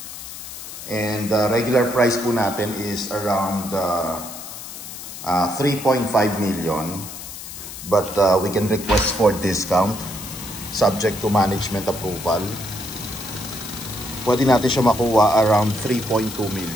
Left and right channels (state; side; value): noise; left; hiss, 11 dB below the sound